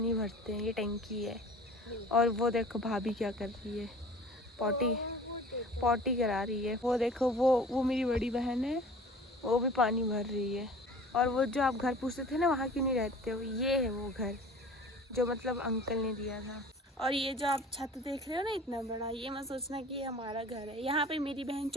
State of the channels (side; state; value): both; normal; correlation 0.44